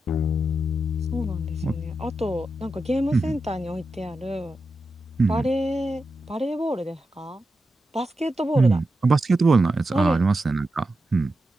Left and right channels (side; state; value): both; normal; correlation 0.89